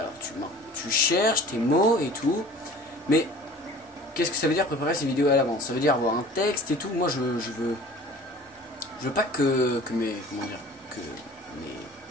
tu cherches tes mots et tout, mais qu'est-ce que ça veut dire préparer ces vidéos à l'avance? Ça veut dire avoir un texte et tout. Moi je veux pas que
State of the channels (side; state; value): both; normal; correlation 0.45